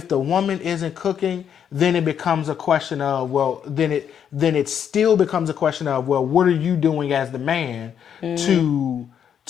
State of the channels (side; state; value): right; quieter; 8.5 dB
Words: the woman isn't cooking, then it becomes a question of, then it still becomes a question of, well, what are you doing as the man